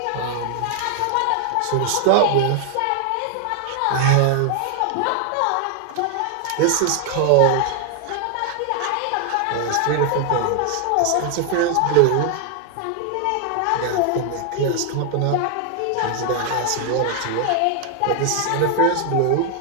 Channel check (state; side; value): different; both; correlation 0.00